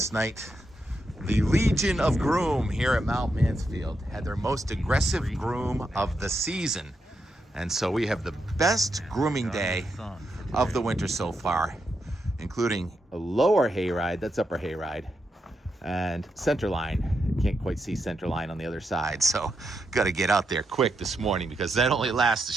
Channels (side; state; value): both; normal; correlation 0.84